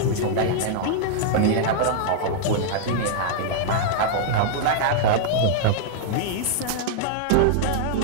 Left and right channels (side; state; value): both; different; correlation -0.01